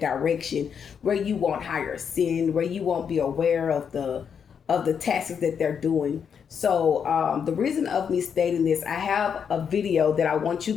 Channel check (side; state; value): right; quieter; 7.2 dB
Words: direction where you won't hire sin, where you won't be aware of the tactics that they're doing. So the reason of me stating this, I have a video that I want you